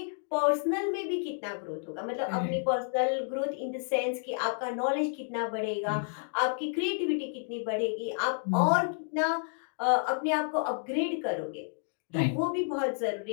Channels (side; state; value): right; silent; digital silence